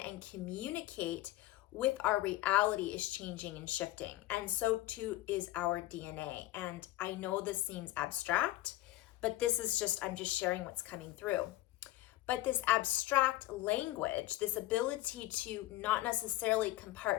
communicate with our reality is changing and shifting. And so too is our DNA. And I know this seems abstract, but this is I'm just sharing what's coming through. But this abstract language, this ability to not necessarily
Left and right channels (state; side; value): quieter; right; 16.6 dB